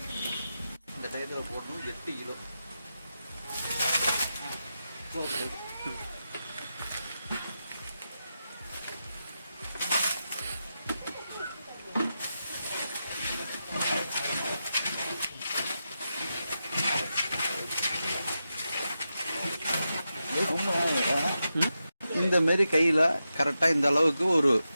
டயத்தில் போடணும். 8 கிலோ இந்த மாரி கையில் கரெக்டாக இந்த அளவுக்கு ஒரு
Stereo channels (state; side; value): inverted; both; correlation -0.89